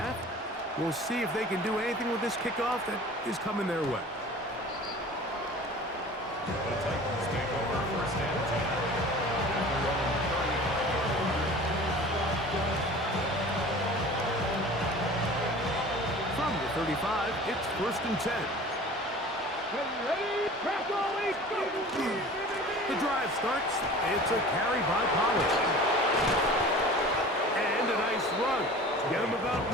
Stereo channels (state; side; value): normal; both; correlation 0.41